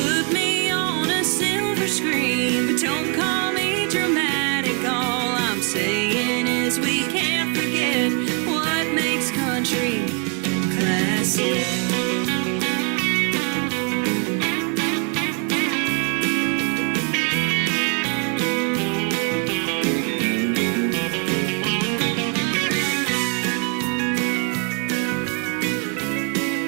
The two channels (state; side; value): quieter; left; 36.0 dB